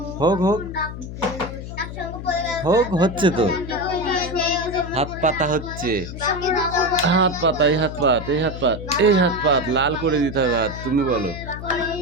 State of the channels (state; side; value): noise; left; hum, 9 dB below the sound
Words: হোক হচ্ছে তো। হাত পাতা হচ্ছে, হাত পাতা, এই হাত পাত, এই হাত পাত, এই হাত পাত, লাল করে দিতে হবে হাত। তুমি বলো।